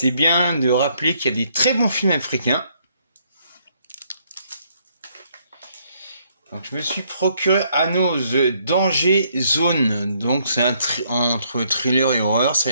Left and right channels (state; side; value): inverted; both; correlation -0.69